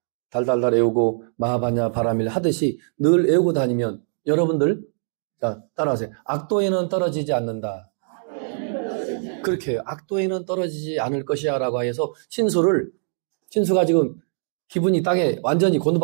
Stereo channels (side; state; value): left; silent; digital silence